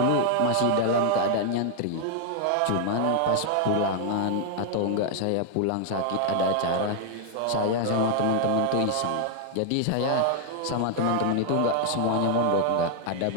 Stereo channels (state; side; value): different; both; correlation -0.01